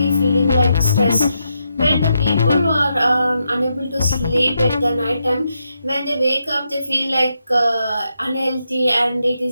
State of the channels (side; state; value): both; inverted; correlation -0.83